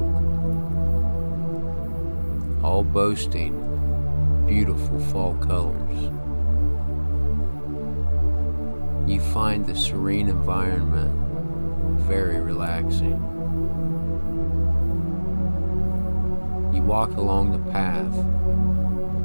all boasting beautiful fall colors. You find the serene environment very relaxing. You walk along the path,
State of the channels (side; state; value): both; inverted; correlation -1.00